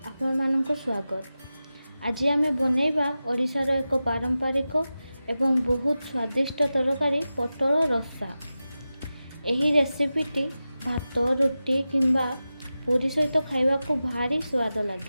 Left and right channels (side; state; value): both; inverted; correlation -0.94